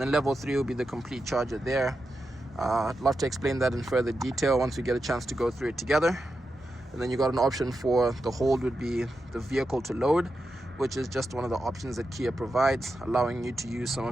then level 3 will be the complete charger there. I'd love to explain that in further detail once we get a chance to go through it together. And then you got an option for the hold would be the vehicle to load, which is just one of the options that Kia provides, allowing you to use some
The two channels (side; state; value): both; normal; correlation 0.88